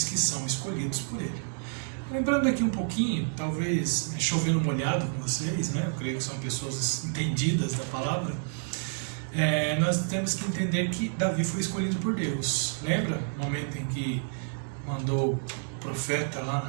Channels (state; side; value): silent; left; 58 dB below the other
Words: que são escolhidos por Ele. Lembrando aqui um pouquinho, talvez chovendo molhado com vocês, né? Eu creio que são pessoas entendidas da palavra. Nós temos que entender que Davi foi escolhido por Deus. Lembra o momento em que mandou o profeta lá